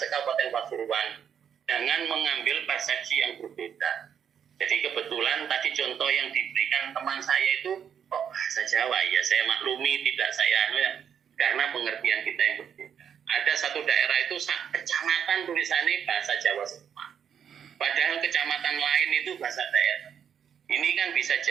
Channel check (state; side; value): quieter; left; 8.2 dB